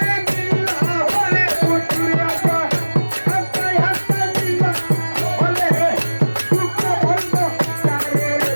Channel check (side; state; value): both; inverted; correlation -1.00